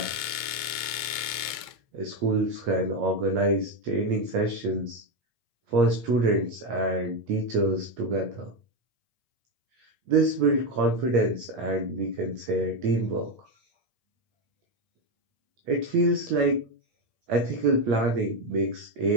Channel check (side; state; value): left; late; 8.6 ms